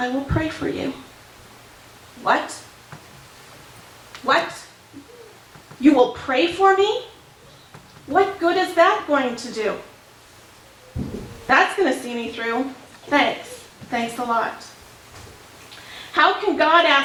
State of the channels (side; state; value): both; identical; correlation 1.00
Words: will pray for you'?" What? What? You will pray for me? What good is that going to do? That's going to see me through. Thanks. Thanks a lot. How can God